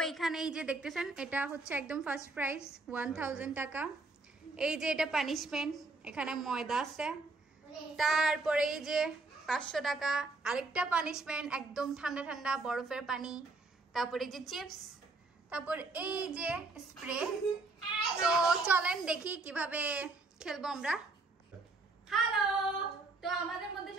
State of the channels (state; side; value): quieter; left; 3.5 dB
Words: এখানে এই যে দেখতেছেন, এটা হচ্ছে একদম ফার্স্ট প্রাইস 1000 টাকা। এই যে এটা পানিশমেন্ট, এখানে ময়দা আছে। তারপরে এই যে 500 টাকা আরেকটা পানিশমেন্ট, একদম ঠান্ডা ঠান্ডা বরফের পানি। তারপরে এই যে চিপস, তারপর এই যে স্প্রে। তো চলেন দেখি কিভাবে খেলবো আমরা। হ্যালো, তো আমাদের মধ্যে